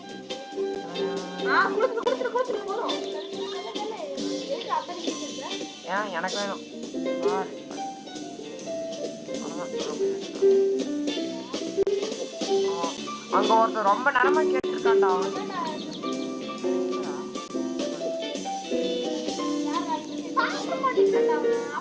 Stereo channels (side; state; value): both; identical; correlation 1.00